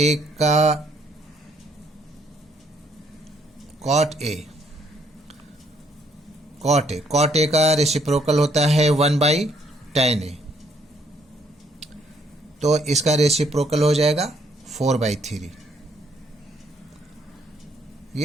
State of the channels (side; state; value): both; normal; correlation 0.68